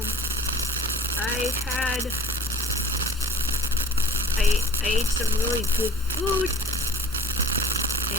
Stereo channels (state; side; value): normal; both; correlation 0.46